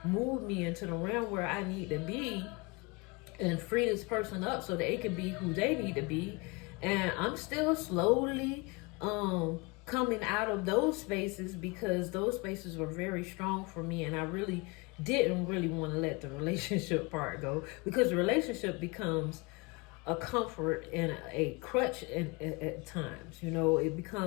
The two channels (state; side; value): quieter; right; 27.5 dB